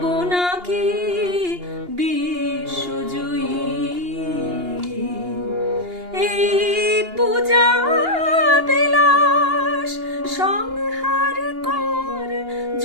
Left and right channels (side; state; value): left; late; 2.8 ms